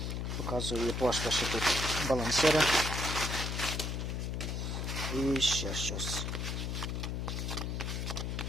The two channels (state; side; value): noise; left; hum, 2 dB below the sound